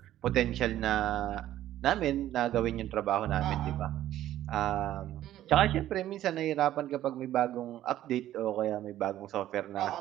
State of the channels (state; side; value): quieter; left; 13.0 dB